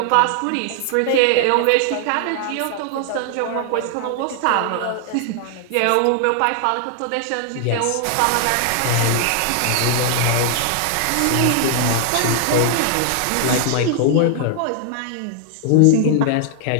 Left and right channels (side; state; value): both; different; correlation 0.00